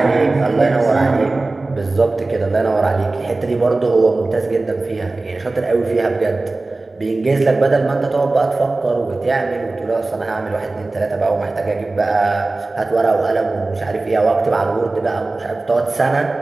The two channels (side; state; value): left; quieter; 3.2 dB